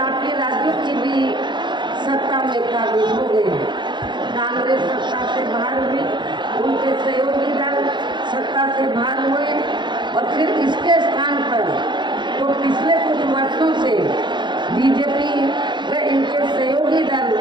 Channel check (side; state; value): left; late; 0.22 ms